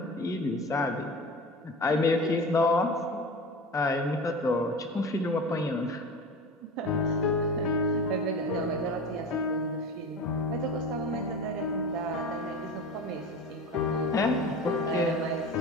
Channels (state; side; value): normal; both; correlation 0.33